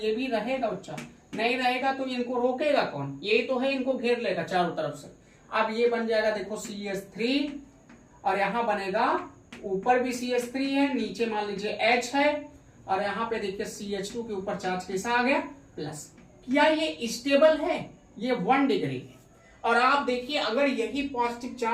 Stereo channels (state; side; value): identical; both; correlation 1.00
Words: भी रहेगा बच्चा, नहीं रहेगा तो इनको रोकेगा कौन, ये तो है, इनको घेर लेगा चारों तरफ से। अब ये बन जाएगा देखो CH3 और यहां बनेगा, ऊपर भी CH3 है, नीचे मान लीजिए H है, और यहाँ पे देखिए CH2 के ऊपर चार्ज कैसा आ गया, प्लस। क्या ये स्टेबल है, ये 1 डिग्री है। और आप देखिए अगर यही पॉजिटिव